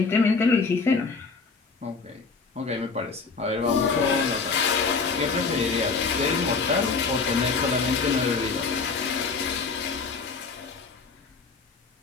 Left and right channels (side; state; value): right; quieter; 4.6 dB